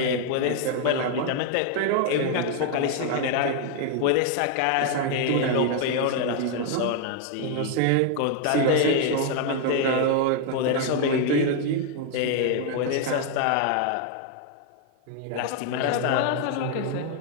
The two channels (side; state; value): both; different; correlation 0.00